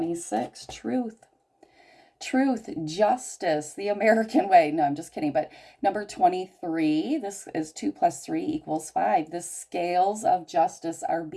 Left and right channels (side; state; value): both; identical; correlation 1.00